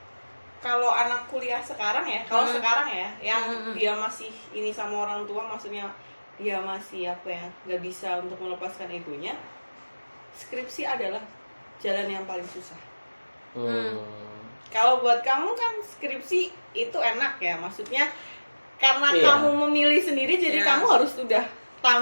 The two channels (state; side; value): inverted; both; correlation -1.00